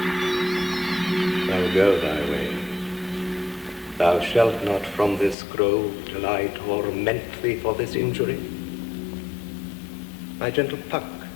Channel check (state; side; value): drops out; right; at 5.4 s